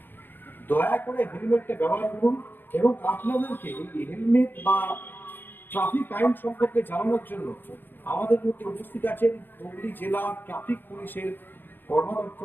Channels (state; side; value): late; right; 0.094 ms